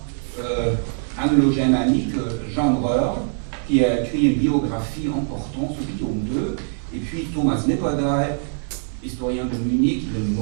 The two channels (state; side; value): silent; left; 64 dB below the other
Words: anglo-germanique, Jean Breur, qui a écrit une biographie importante sur Guillaume II, et puis Thomas Nipperdey, historien de Munich, il est